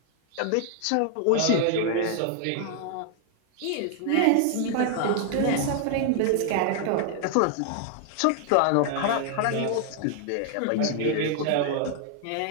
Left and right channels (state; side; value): different; both; correlation 0.00